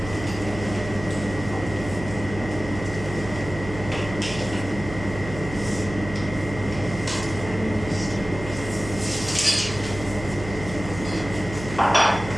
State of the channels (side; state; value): right; noise; hum, 10 dB below the sound